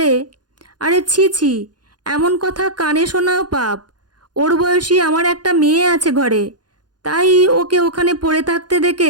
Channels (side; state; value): left; late; 0.70 ms